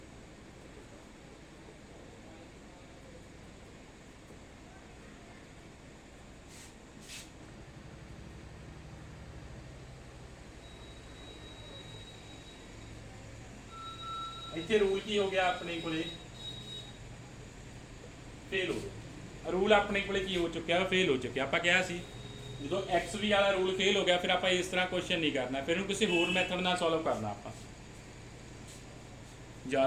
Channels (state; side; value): identical; both; correlation 1.00